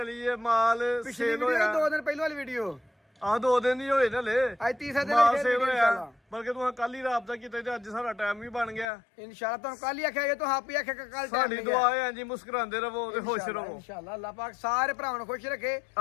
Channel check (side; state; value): right; drops out; at 8.8 s